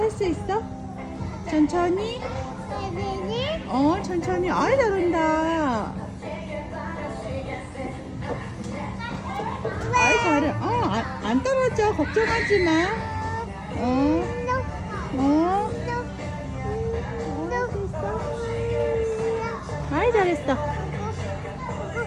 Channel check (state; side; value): identical; both; correlation 1.00